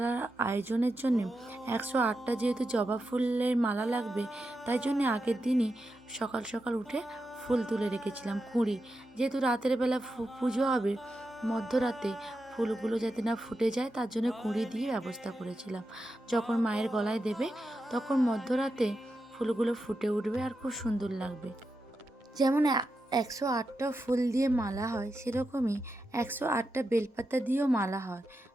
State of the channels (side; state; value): both; normal; correlation 0.88